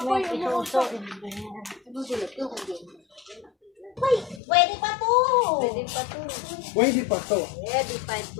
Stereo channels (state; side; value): drops out; right; at 4.4 s